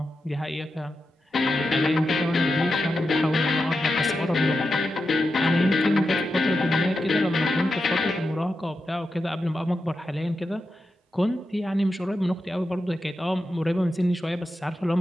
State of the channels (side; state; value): both; normal; correlation 0.89